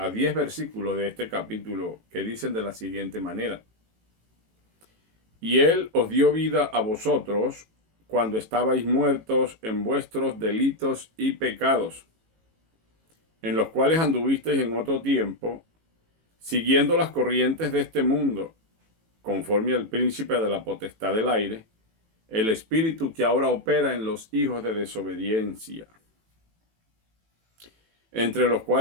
10 versículos de este capítulo que dicen de la siguiente manera: Y él os dio vida a vosotros cuando estabais muertos en vuestros delitos y pecados, en los cuales anduvisteis en otro tiempo, siguiendo las corrientes de este mundo, conforme al príncipe de la potestad del aire, el espíritu que ahora opera en los hijos de desobediencia, entre los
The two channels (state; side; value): late; left; 18 ms